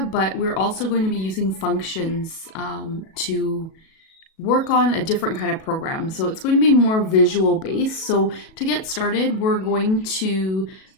but we're also going to be using functions to work on a different kind of program. So it's going to be more visual based. So to get started, we're going to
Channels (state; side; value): late; right; 37 ms